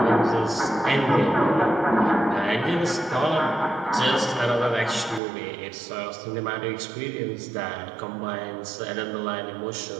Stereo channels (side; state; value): left; drops out; at 5.2 s